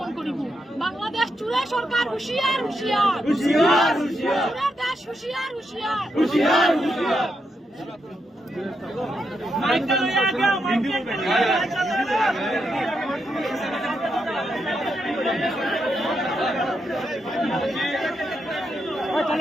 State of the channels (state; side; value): normal; both; correlation 0.82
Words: করিব। বাংলাদেশ চুরে সরকার হুঁশিয়ার হুঁশিয়ার, চুরের দেশ হুঁশিয়ার হুঁশিয়ার।